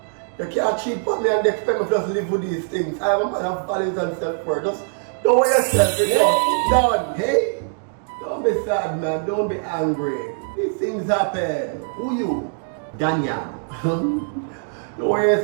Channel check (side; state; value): left; silent; digital silence